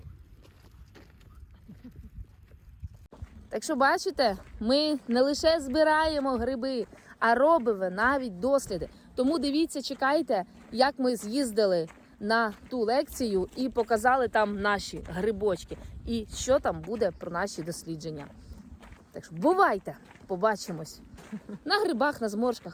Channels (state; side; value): identical; both; correlation 1.00